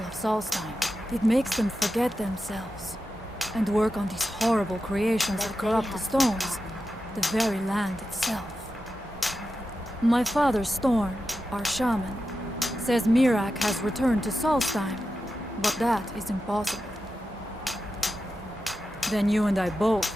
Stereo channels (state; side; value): normal; both; correlation 0.91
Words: of Solstheim. It makes them forget themselves and work on these horrible creations that corrupt the stones, the very land itself. My father, Storm, our shaman, says Miraak has returned to Solstheim, but that is impossible. Then you and I both